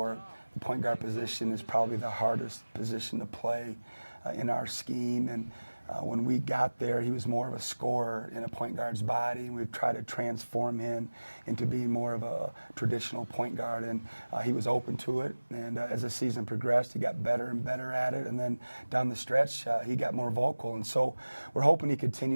The point guard position is probably the hardest position to play in our scheme, and when we got there, he was more of a scorer in a point guard's body, and we've tried to transform him into being more of a traditional point guard, and he was open to it, and as the season progressed, he got better and better at it, and then down the stretch, he got more vocal, and so we're hoping he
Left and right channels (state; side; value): inverted; both; correlation -1.00